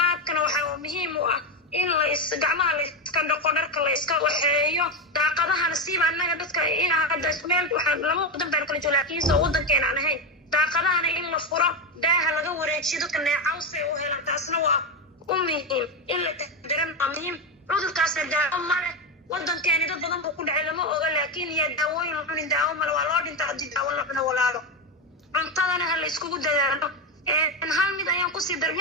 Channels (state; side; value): normal; both; correlation 0.13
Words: waxa muhiim u ah in la gacmaha la iska dhaqo dharka la iska waxeeyo daaqadahana siiba annaga dadka in hadda meel waxaan lama wadan baan kala joogaa laakiin soo wadankeena aan ahayn daaqadahana in la furo daaha laga wareejiyo dadka neecawse u helaan taasna waa u muhiim in la taxadaran waa muhiim cudurkaasna daawo male wadankeeni dad badan buu ku dhacay lama oga laakiin yaa daawooyin la cunin daawo male waa loo dhintaa haddii daawo la cuno walaalo cuntadana ha la iskugu dadaalo hal mid ayaan kusii